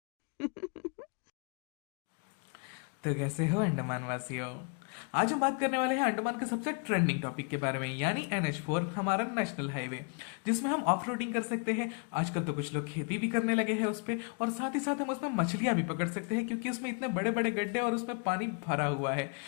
तो कैसे हो अंडमान वासियों। आज हम बात करने वाले हैं अंडमान के सबसे ट्रेंडिंग टॉपिक के बारे में, यानी NH4, हमारा नेशनल हाईवे, जिसमें हम ऑफ रोडिंग कर सकते हैं। आजकल तो कुछ लोग खेती भी करने लगे हैं उस पे, और साथ ही साथ हम उसमें मछलियां भी पकड़ सकते हैं, क्योंकि उसमें इतने बड़े बड़े गड्ढे और उसमें पानी भरा हुआ है।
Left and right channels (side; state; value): right; quieter; 35.3 dB